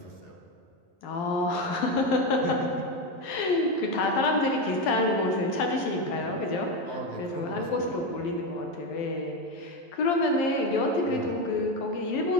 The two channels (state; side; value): late; right; 12 ms